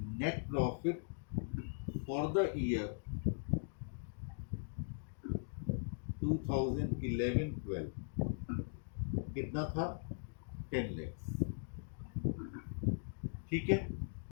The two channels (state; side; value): silent; right; digital silence